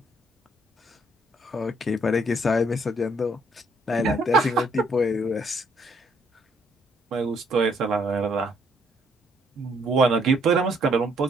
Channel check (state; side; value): normal; both; correlation 0.67